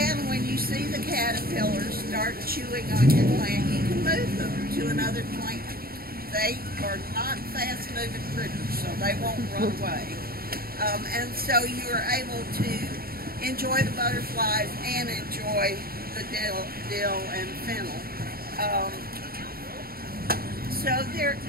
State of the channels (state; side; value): late; left; 0.44 ms